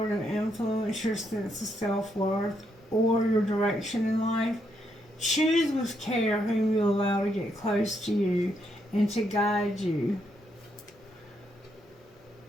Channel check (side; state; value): both; normal; correlation 0.77